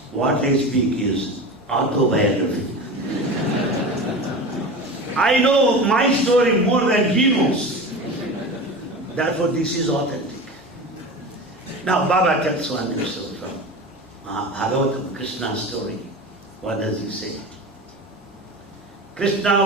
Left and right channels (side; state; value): both; normal; correlation 0.30